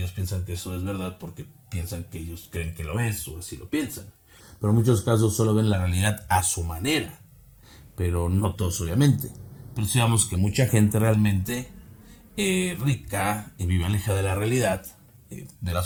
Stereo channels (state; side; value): identical; both; correlation 1.00